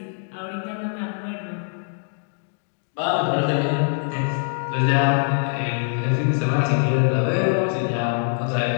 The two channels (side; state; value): right; silent; digital silence